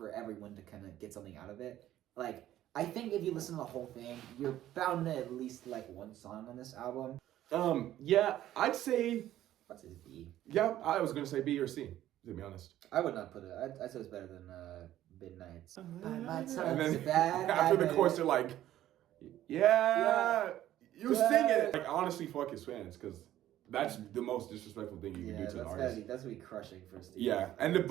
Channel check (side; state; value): left; quieter; 13.1 dB